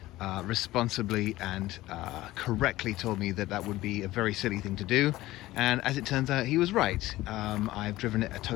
responsibly and correctly told me that would be a very silly thing to do, and as it turns out, he was right. I've driven it a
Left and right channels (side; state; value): right; quieter; 17.0 dB